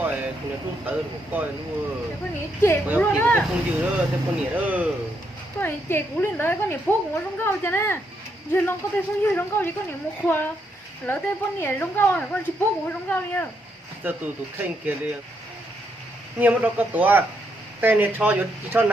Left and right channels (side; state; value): both; normal; correlation 0.77